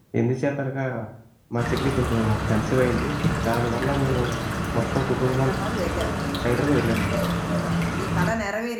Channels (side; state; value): both; identical; correlation 1.00